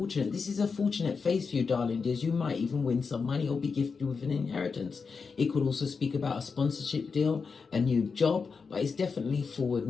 This is a fortunate phase for you, darling dears. You might even win some money or be gifted with an inheritance. It could also speak about a sponsorship deal, a new job, but it's definitely forward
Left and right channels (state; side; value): quieter; right; 5.2 dB